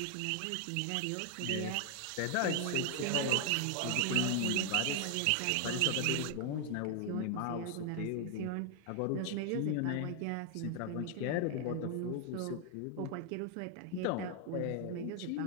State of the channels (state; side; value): different; both; correlation 0.00